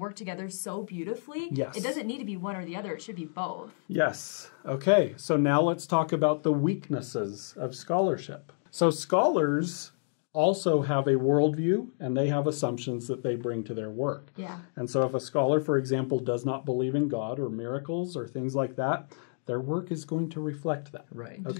together so beautifully. Yes. It doesn't need to be one or the other. It should be both. Yes. Okay, so now let's talk about the weaknesses of scholarship. So scholars also have a worldview, and they have assumptions that they bring to their work. Yeah. And so if a scholar, for example, does not believe in God or miracles or things like that, their work is going to reflect that. Right.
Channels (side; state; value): right; silent; digital silence